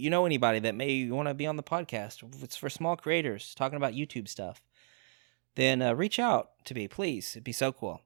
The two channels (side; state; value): left; silent; 56 dB below the other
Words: know anybody that may want to be on the podcast, if it's for small creators talking about YouTube stuff, then reach out to me, please. It'd be so cool.